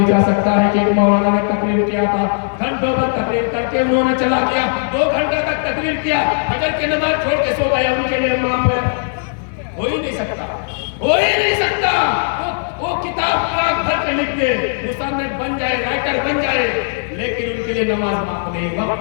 جا سکتا ہے کہ ایک مولانا نے تقریر کیا تھا، گھنٹوں پر تقریر کر کے انہوں نے چلا گیا، 2 گھنٹے تک تقریر کیا، فجر کی نماز چھوڑ کے سو گیا، ان کے لیے معاف ہے؟ ہو ہی نہیں سکتا، ہو ہی نہیں سکتا۔ وہ کتاب پاک بھر کے لکھ دے، مصنف بن جائے، رائٹر بن جائے، لیکن ان کے لیے نماز معاف نہیں۔ وقت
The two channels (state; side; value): silent; right; 58 dB below the other